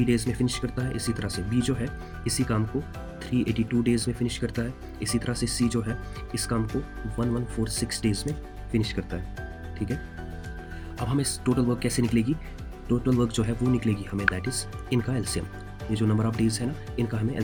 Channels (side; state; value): both; identical; correlation 1.00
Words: डेज में फिनिश करता है, इसी तरह से बी जो है इसी काम को 382 डेज में फिनिश करता है, इसी तरह से सी जो है इस काम को 1146 डेज में फिनिश करता है। ठीक है, अब हमें टोटल वर्क कैसे निकलेगी, टोटल वर्क जो है वो निकलेगी हमें दैट इज इनका एलसीएम। ये जो नंबर ऑफ डेज है ना, इनका हमें